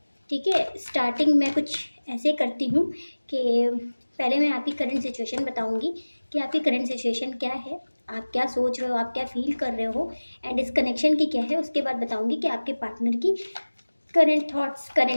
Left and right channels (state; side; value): inverted; both; correlation -1.00